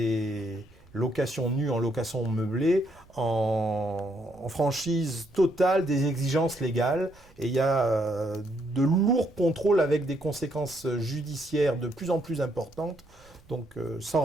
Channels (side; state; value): right; noise; rumble, 27 dB below the sound